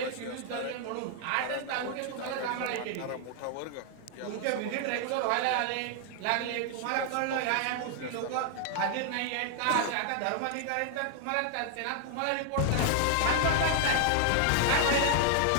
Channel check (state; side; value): different; both; correlation 0.00